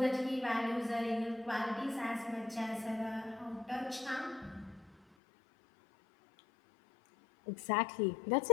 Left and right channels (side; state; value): right; drops out; at 5.2 s